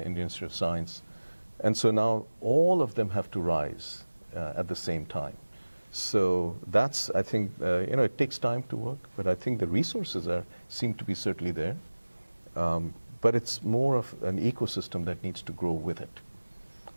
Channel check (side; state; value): both; inverted; correlation -1.00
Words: Institute of Science. And so now all of them have to rise at the same time. So that's, I think, it takes time to work, but I think the resources seem to be certainly there. But it's more of an ecosystem that needs to grow with it.